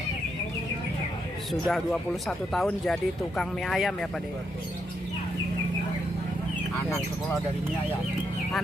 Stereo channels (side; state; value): both; normal; correlation 0.79